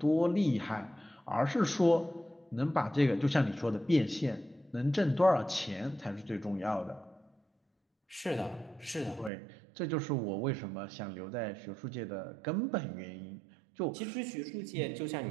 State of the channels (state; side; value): drops out; left; at 9.3 s